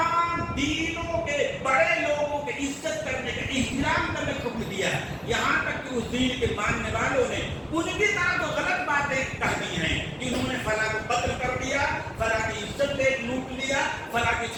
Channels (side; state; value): both; identical; correlation 1.00